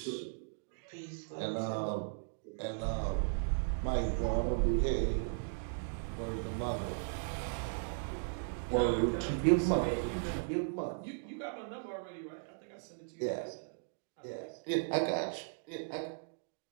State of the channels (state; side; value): silent; left; digital silence